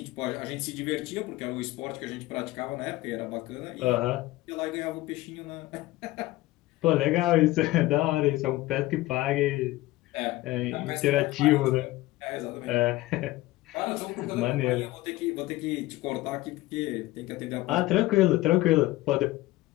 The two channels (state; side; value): quieter; right; 18.2 dB